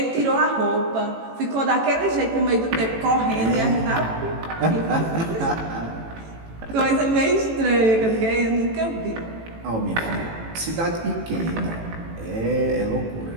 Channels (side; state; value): left; late; 18 ms